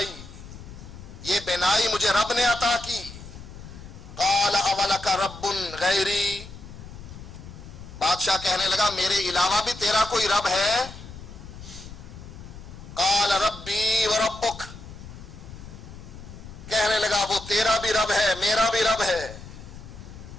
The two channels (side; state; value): left; noise; rumble, 14 dB below the sound